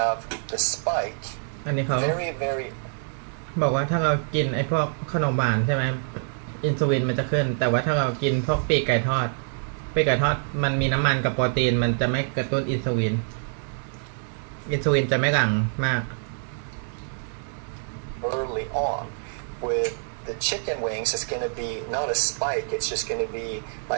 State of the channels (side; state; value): left; silent; 60 dB below the other